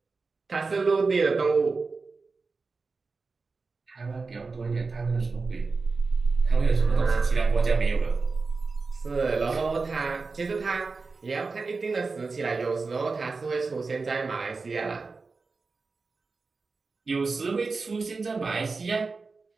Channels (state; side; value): quieter; left; 4.2 dB